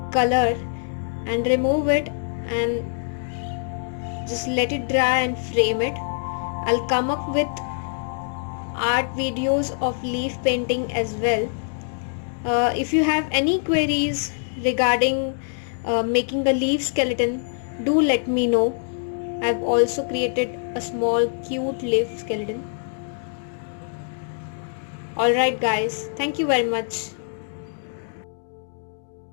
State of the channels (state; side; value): silent; right; digital silence